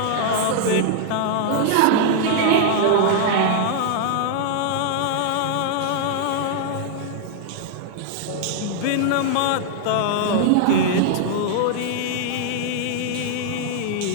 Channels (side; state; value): both; different; correlation -0.01